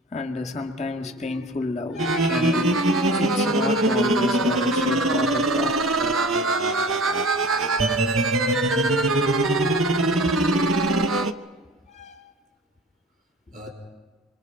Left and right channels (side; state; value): both; normal; correlation 0.41